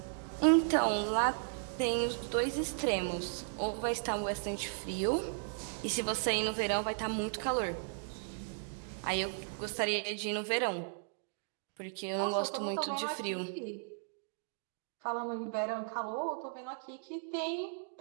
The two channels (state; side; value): silent; left; digital silence